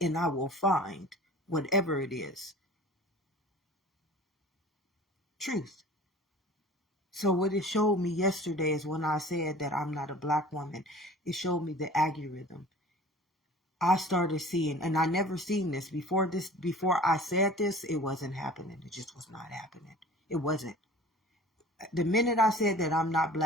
I will find whatever it is. Truth. So what it showed me yesterday is when I said that I'm not a black woman, it showed me the algorithm. I started seeing, and I never seen this before I said this, it wasn't happening. It just was not happening. It wasn't. The minute I said that I'm not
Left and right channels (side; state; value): both; normal; correlation 0.44